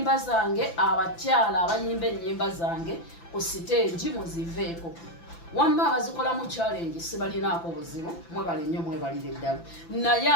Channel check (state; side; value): late; right; 5.9 ms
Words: zange abakyala abayimba ennyimba zange ku siteegi muziveeko wamma abazikola mu challenge sibalinaako buzibu mwebale nnyo mwebalire ddala naye